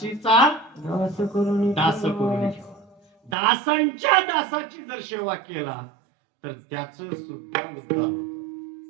दास करून दासांच्या दासाची जर सेवा केला तर त्याच सुद्धा उद्धार होतो.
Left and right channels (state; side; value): drops out; left; at 3.4 s